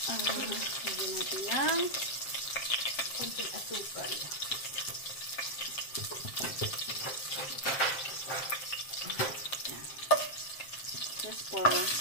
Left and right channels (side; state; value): right; late; 7.5 ms